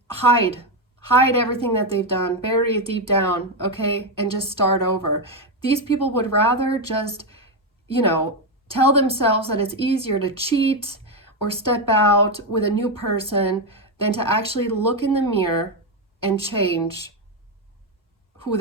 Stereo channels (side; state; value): both; normal; correlation 0.07